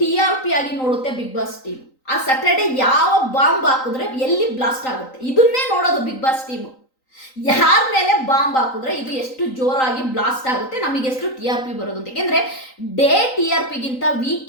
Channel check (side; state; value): right; late; 3.9 ms